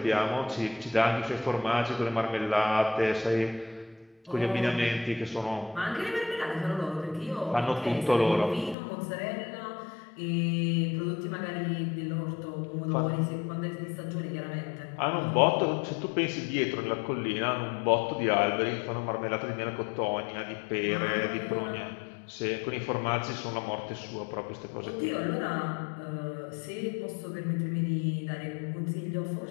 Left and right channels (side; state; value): right; drops out; at 8.8 s